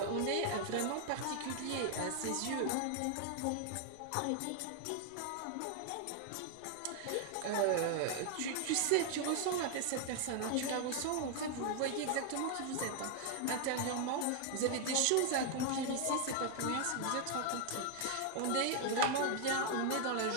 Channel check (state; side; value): different; both; correlation 0.00